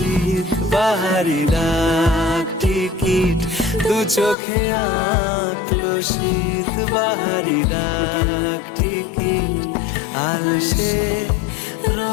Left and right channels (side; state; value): right; drops out; at 4.4 s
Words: বাহারি ডাক টিকিট, দু চোখে আঁকলো শীত বাহারি ডাক টিকিট। আলসে